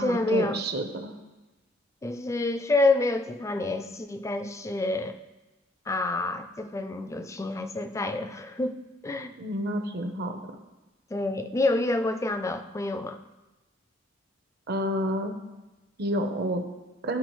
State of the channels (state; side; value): normal; both; correlation 0.64